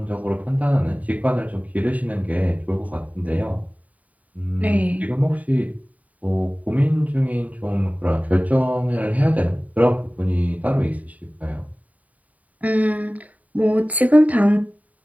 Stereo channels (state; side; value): late; left; 0.072 ms